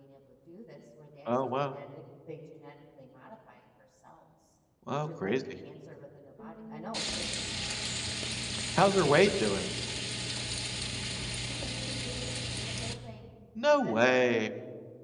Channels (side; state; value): both; identical; correlation 1.00